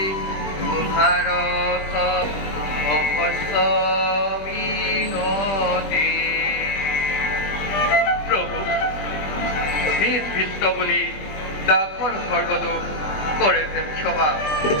তোমাৰ মিনতি। প্ৰভু নিজ ভৃত্য বুলি দাসৰ সৰ্বদোষ কৰে যে ক্ষমা।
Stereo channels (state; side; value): late; right; 21 ms